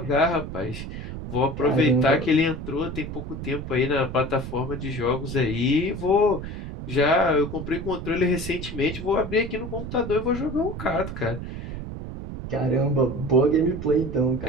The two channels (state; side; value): noise; right; rumble, 8 dB below the sound